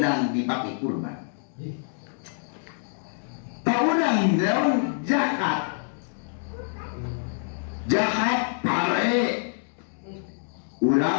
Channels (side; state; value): right; silent; digital silence